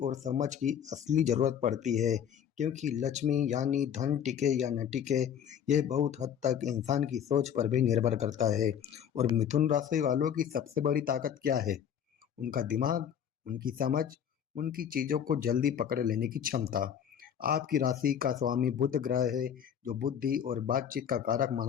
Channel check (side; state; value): right; quieter; 8.8 dB